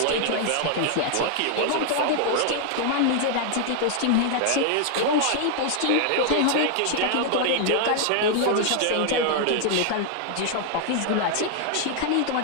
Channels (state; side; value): different; both; correlation 0.00